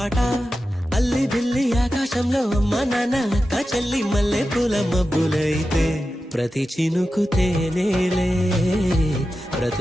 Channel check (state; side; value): normal; both; correlation 0.92